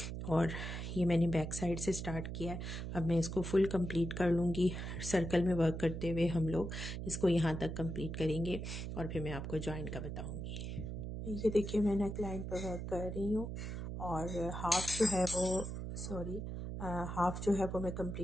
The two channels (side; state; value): right; noise; hum, 5 dB below the sound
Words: और ये मैंने बैक साइड से स्टार्ट किया है, अब मैं इसको फुल कंप्लीट कर लूँगी। सर्कल में वर्क करते हुए हम लोग इसको यहाँ तक कंप्लीट करेंगे और फिर मैं आपको जॉइन का बताऊँगी। ये देखिए मैं नेक लाइन पर वर्क कर रही हूँ, और हाफ जो है वो हाफ जो है वो मैं